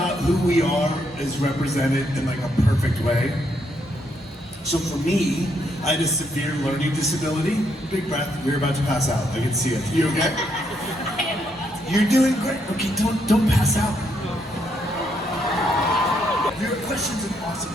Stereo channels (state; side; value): normal; both; correlation 0.75